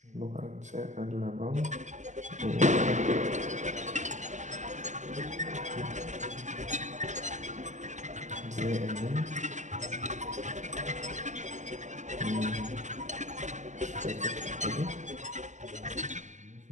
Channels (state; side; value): late; left; 0.35 ms